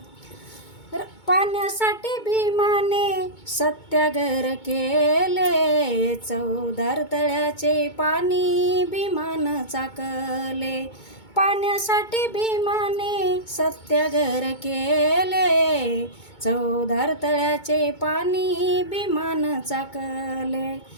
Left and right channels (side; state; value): right; late; 2.2 ms